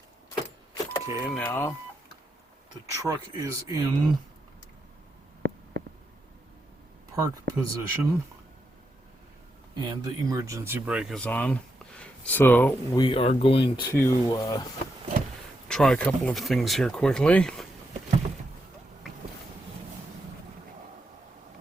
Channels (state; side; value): normal; both; correlation 0.83